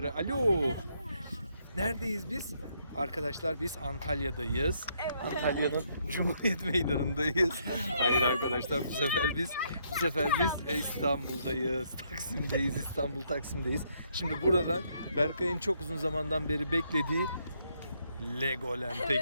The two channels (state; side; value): inverted; both; correlation -0.73